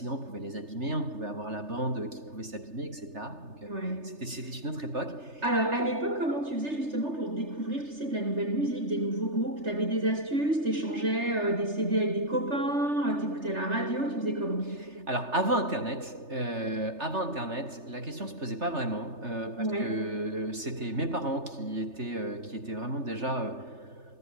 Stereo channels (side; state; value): left; late; 3.3 ms